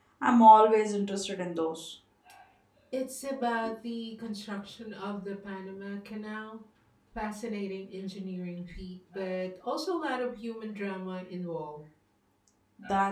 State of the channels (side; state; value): both; identical; correlation 1.00